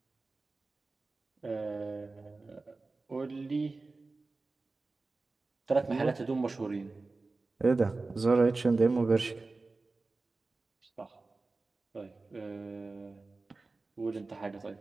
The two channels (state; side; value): quieter; left; 3.6 dB